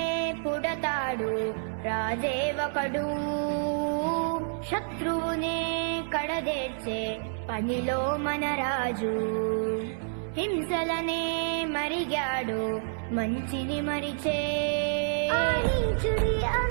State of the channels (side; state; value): left; silent; 59 dB below the other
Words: పుడతాడు రాజే ఒకడు. శత్రువునే కడదేర్చే పనిలో మన రాజు, హింసలనే మరిగాడు మంచిని మరిచే. ఆ నీచుడి